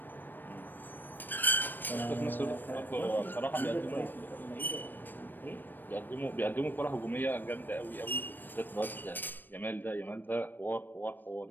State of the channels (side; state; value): right; late; 0.092 ms